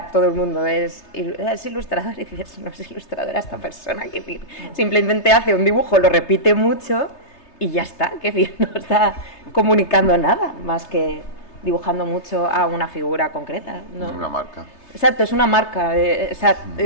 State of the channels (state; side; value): late; right; 3.3 ms